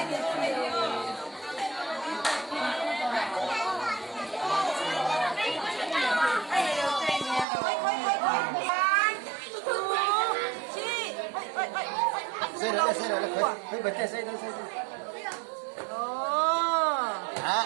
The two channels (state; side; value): drops out; left; at 7.5 s